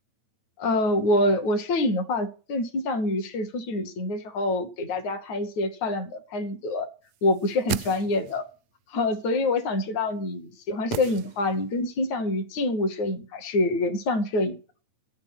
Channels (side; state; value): right; late; 8.9 ms